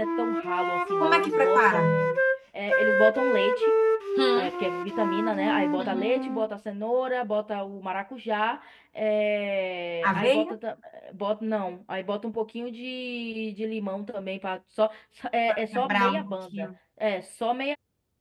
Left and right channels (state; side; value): identical; both; correlation 1.00